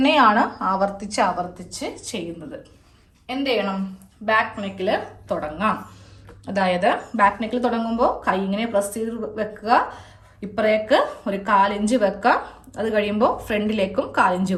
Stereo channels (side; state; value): both; identical; correlation 1.00